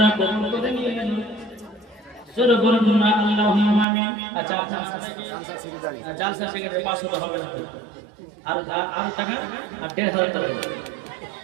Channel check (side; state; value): left; drops out; at 3.9 s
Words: কবুল করে নিয়ে নেন জোরে বলুন না আল্লাহুম্মা আমিন আচ্ছা জালসা থেকে 500 টাকা হবে না আর টাকা আর 1500 টাকা